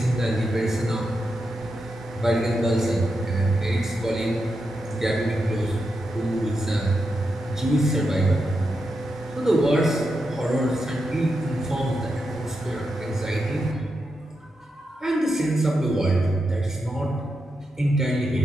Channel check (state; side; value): normal; both; correlation 0.86